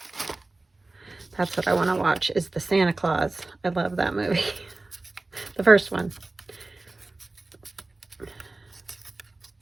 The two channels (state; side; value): quieter; left; 3.2 dB